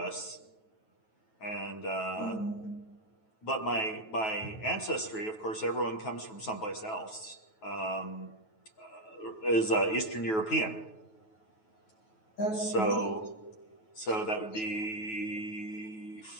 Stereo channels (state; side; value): late; right; 9.2 ms